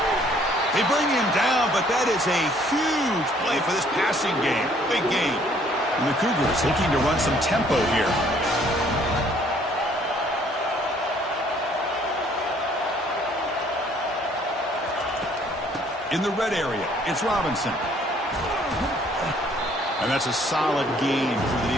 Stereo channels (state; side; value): normal; both; correlation 0.61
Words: They bring him down, but that is a huge play for this passing game. Big game. And the Cougars looking to run some tempo here. In the red area, it's Robinson. And that's a solid gain for the